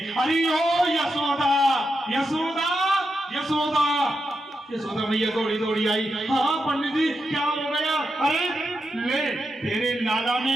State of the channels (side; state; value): both; normal; correlation 0.86